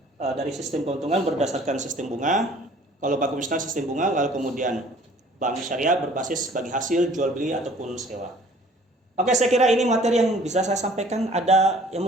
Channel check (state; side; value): normal; both; correlation 0.53